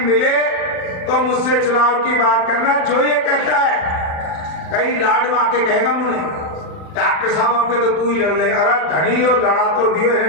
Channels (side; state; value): right; late; 40 ms